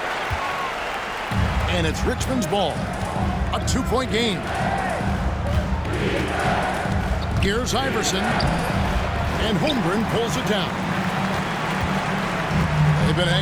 And it's Richmond's ball. A 2-point game. Here's Iverson. And Holmgren pulls it down. They've been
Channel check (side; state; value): both; identical; correlation 1.00